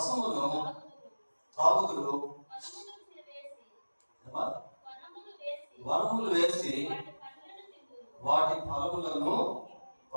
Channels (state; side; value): inverted; both; correlation -1.00